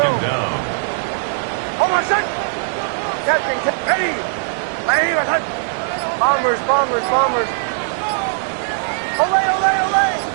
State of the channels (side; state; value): left; silent; digital silence